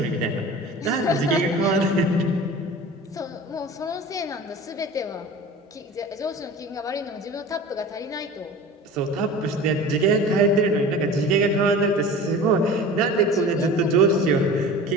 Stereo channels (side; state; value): both; normal; correlation 0.37